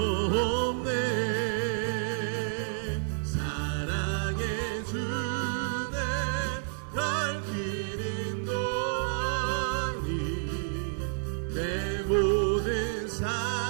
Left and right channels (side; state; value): left; silent; digital silence